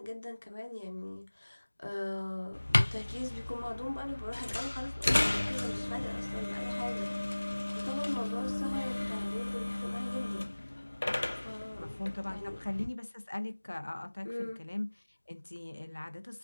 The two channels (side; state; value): both; inverted; correlation -1.00